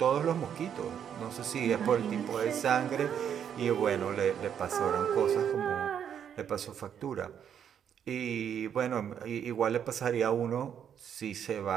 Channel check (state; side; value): quieter; left; 8.6 dB